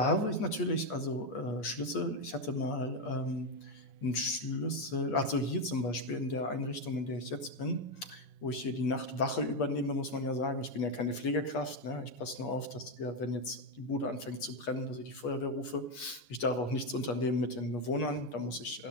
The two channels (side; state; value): right; late; 8.4 ms